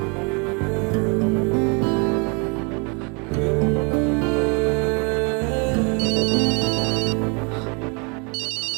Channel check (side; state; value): left; quieter; 33.0 dB